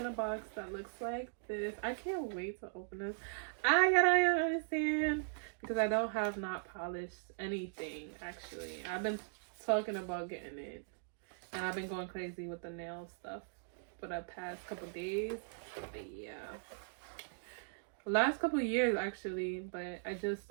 a box that looks like this. I can't wait to open this. I gotta understand because I don't have not polished anything. Actually, I've been talking about getting it. And I've been going crazy with the nail stuff for the past couple days. But yeah. Last couple years actually, but I just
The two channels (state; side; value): silent; left; digital silence